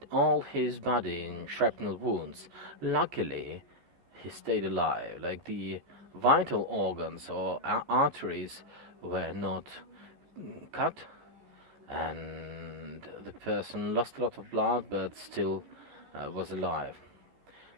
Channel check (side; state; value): left; late; 14 ms